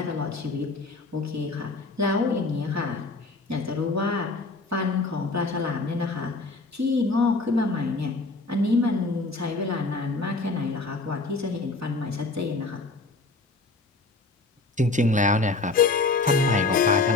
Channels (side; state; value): right; quieter; 3.4 dB